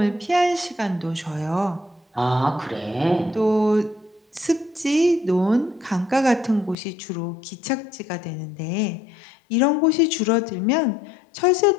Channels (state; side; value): drops out; right; at 6.8 s